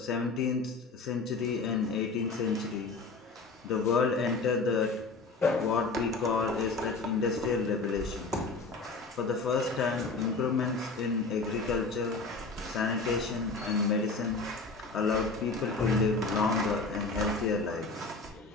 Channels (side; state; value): right; quieter; 3.8 dB